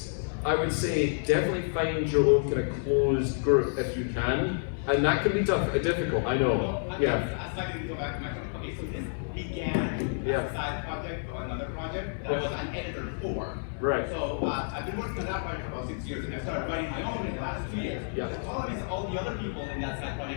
I would say definitely find your own kind of closed group if you can, and that can be difficult. I know. Well, Yeah. I'd like to go back to my topic. Okay, so this began as a side project or another project that I was an editor for. Right. So I've been working on that project for about 6 years, and I started writing my own in the last 2 years. Yeah. The problem is all the other people in that side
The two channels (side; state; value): right; silent; digital silence